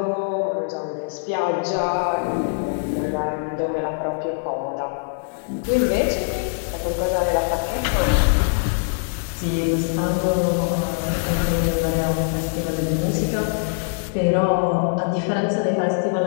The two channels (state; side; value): silent; right; digital silence